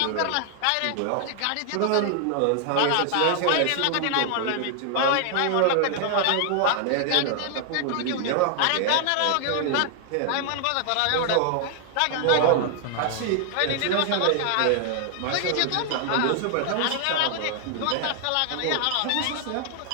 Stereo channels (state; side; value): different; both; correlation 0.00